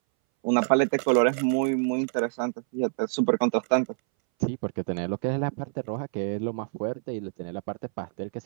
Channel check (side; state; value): left; silent; 60 dB below the other